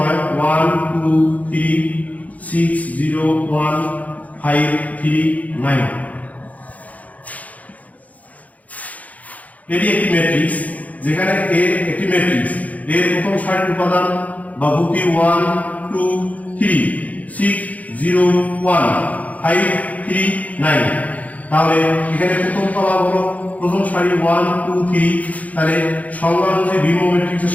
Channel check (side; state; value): right; late; 0.073 ms